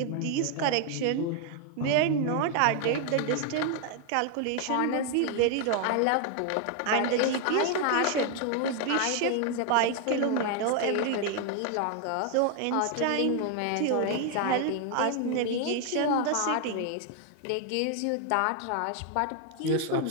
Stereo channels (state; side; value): different; both; correlation 0.00